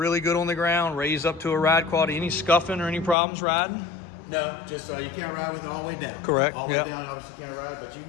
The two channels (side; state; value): right; drops out; at 3.2 s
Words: good on the ground, raise up to a ride quality. Any scuffing or any problems riding? No, just you can't ride with it all the way down. Correct. All the Yep. way down, obviously you can't ride, but you can